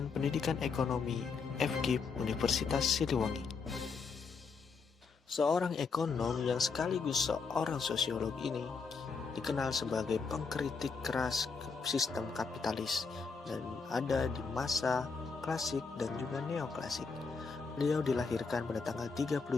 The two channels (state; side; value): quieter; right; 5.0 dB